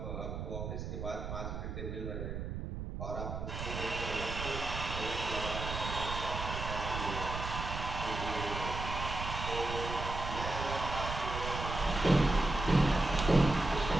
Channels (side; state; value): right; noise; rumble, 5 dB below the sound